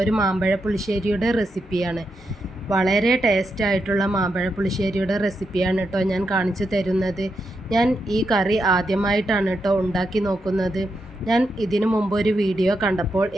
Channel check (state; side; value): normal; both; correlation 0.84